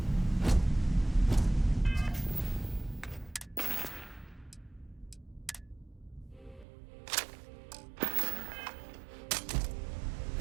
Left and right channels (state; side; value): drops out; left; at 6.7 s